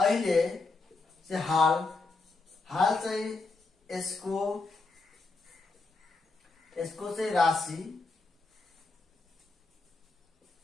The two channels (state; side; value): quieter; right; 3.8 dB